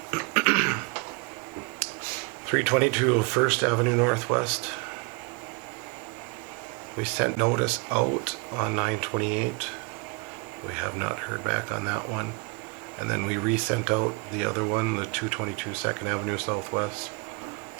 322 First Avenue Northwest. We sent notice out on 9/28. We have not heard back on that one. And then we resent out the other one, the 222 Second Avenue Southwest.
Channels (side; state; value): left; quieter; 30.1 dB